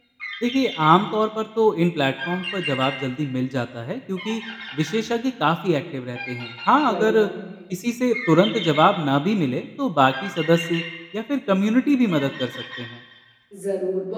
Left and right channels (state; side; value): identical; both; correlation 1.00